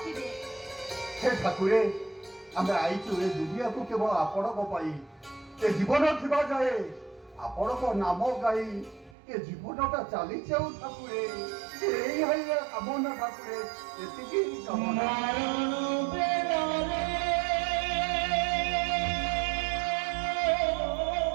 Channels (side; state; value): left; drops out; at 9.2 s